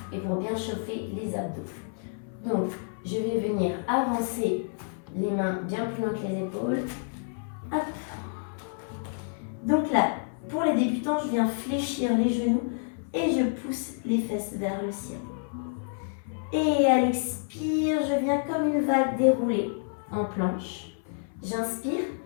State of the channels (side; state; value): right; silent; 57 dB below the other